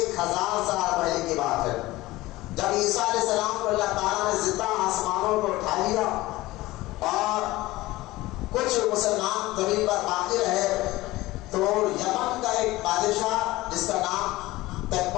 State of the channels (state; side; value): quieter; right; 18.6 dB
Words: سال پہلے کی بات ہے، جب عیسیٰ علیہ السلام کو اللہ تعالیٰ نے زندہ آسمانوں کو اٹھا لیا اور کچھ مسلمان زمین پر باقی رہے تو یمن کا ایک بادشاہ جس کا نام